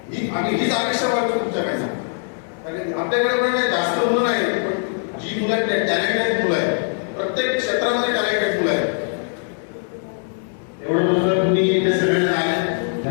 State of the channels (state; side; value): silent; right; 65 dB below the other